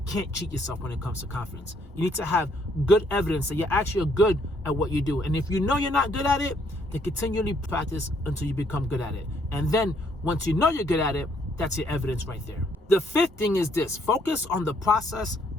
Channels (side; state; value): both; normal; correlation 0.68